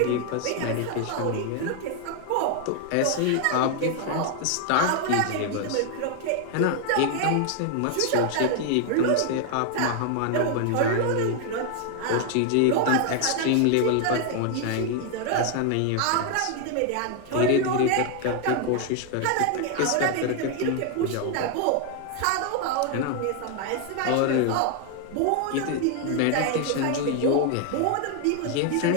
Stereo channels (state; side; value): different; both; correlation 0.00